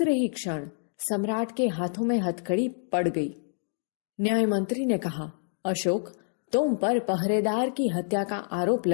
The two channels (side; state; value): right; silent; digital silence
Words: ही क्षण सम्राट के हाथों में हथकड़ी पड़ गई। न्याय मंत्री ने कहा, अशोक, तुम पर पहरेदार की हत्या का आरोप